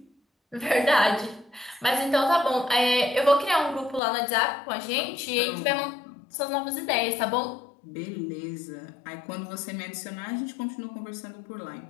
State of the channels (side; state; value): right; drops out; at 4.0 s